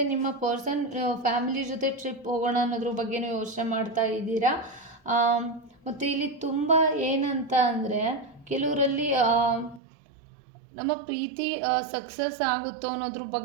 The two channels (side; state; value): left; drops out; at 9.8 s